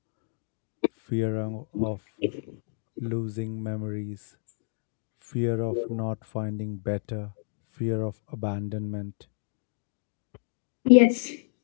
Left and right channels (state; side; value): silent; right; digital silence